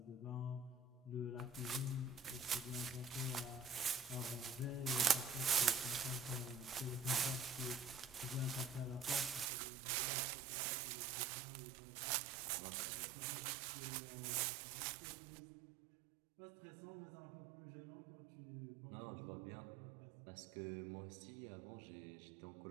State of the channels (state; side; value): drops out; left; at 9.5 s